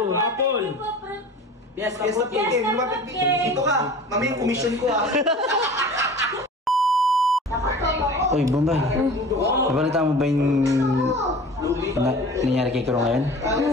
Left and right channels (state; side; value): normal; both; correlation 0.41